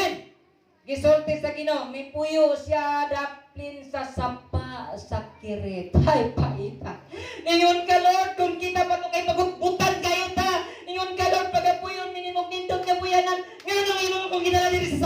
Gisulti sa Ginoo, mipuyo siya daplin sa sapa sa kirit. Ay paita. Ningon ka Lord kung kita pa to kay pagbutan kayo ta. Ningon ka Lord pagapuyon minimog nindot nga buyanan. Nganong imo kung ginala diri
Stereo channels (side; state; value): both; identical; correlation 1.00